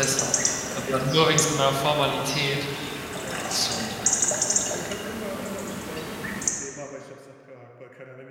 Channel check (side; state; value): both; identical; correlation 1.00